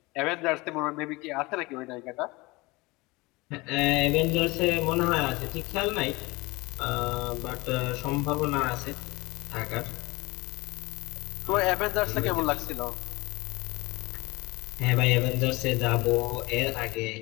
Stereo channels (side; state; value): right; quieter; 23.3 dB